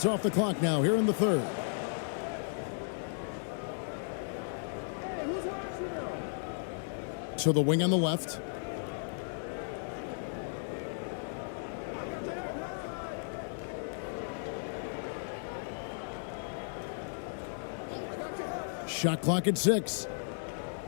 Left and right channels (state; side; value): silent; right; digital silence